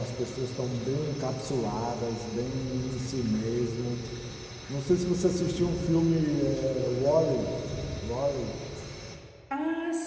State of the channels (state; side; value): identical; both; correlation 1.00